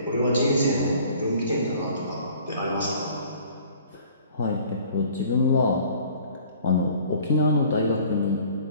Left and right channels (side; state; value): both; inverted; correlation -0.52